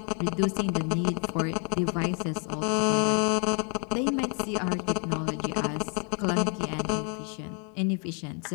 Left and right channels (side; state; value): right; quieter; 38.8 dB